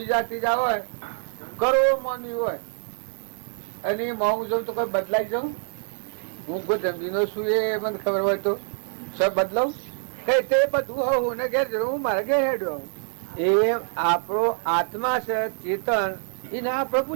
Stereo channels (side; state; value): left; silent; 61 dB below the other